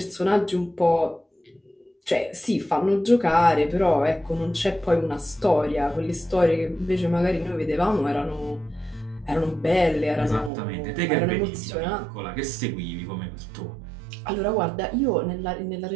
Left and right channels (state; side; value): drops out; left; at 10.5 s